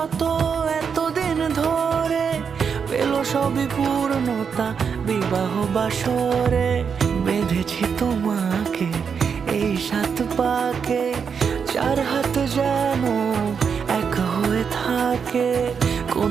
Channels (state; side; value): quieter; left; 6.4 dB